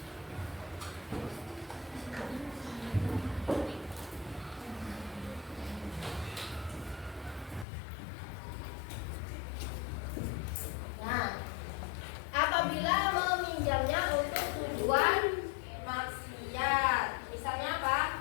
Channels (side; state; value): right; drops out; at 7.7 s